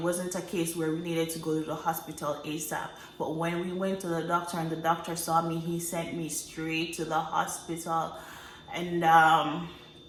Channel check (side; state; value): both; identical; correlation 1.00